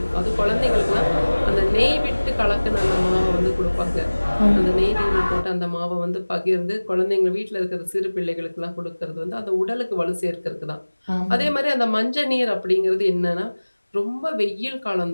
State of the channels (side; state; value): both; inverted; correlation -1.00